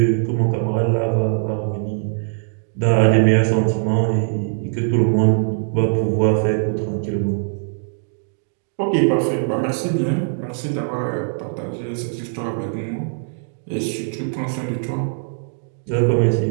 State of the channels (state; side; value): silent; left; digital silence